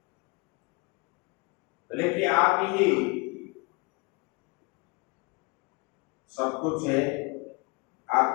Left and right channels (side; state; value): right; quieter; 28.0 dB